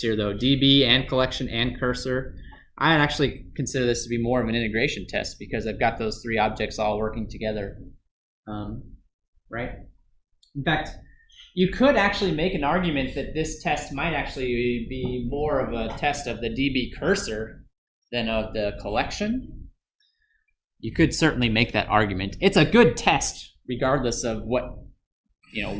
though, DB and collection and cursor. I actually consider this to be more of an integration test because I've got those three objects all working together, right? In fact, you could actually make an argument that this test might actually be more of a test of the DB cursor than of the collection. You could certainly make that argument. It's a good test regardless of what,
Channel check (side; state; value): both; identical; correlation 1.00